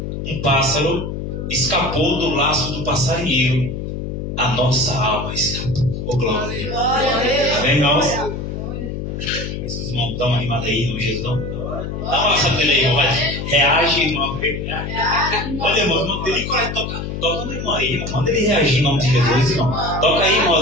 um pássaro escapou do laço do passarinheiro, a nossa alma escapou. Oh, glória! Amém, irmãos? Esses irmãos estão animados aí, irmão Jesus. Dá uma sabedoria aí, irmão. Reage, irmão. Olha, irmão, não tem nem coragem de tocar. Toca no irmão aí, irmão. Manda ele reagir em nome de Jesus, irmão. Toca aí, irmão,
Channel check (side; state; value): left; noise; hum, 5 dB below the sound